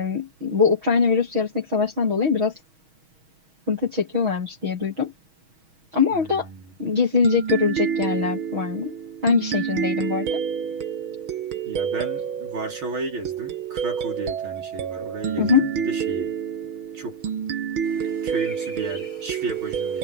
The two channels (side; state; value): left; late; 6.3 ms